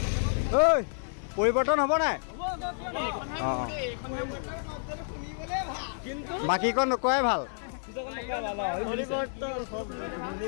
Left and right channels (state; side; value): silent; right; 58 dB below the other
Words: ঐ পৰিৱৰ্তন হ'ব নাই? অঁ বাকীকণ নকোৱাই ভাল।